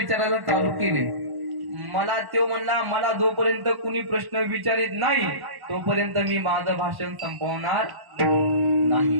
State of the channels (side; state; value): left; late; 1.1 ms